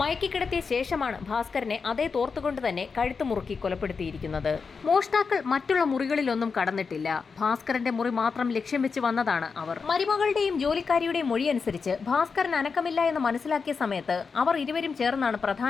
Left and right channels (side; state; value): right; quieter; 5.2 dB